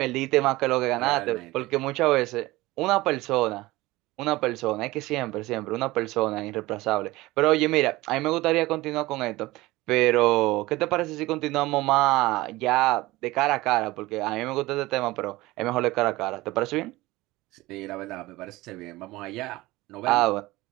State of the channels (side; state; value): left; quieter; 19.4 dB